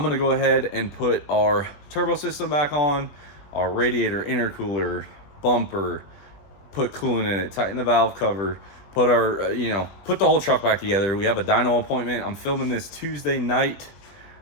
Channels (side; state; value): right; late; 20 ms